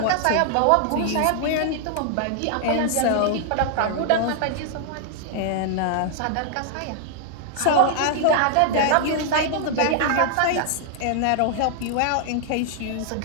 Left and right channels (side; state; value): both; different; correlation 0.00